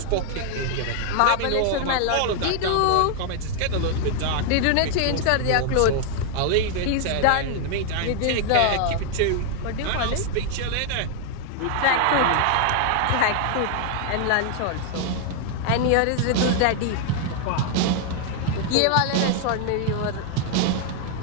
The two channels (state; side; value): different; both; correlation 0.00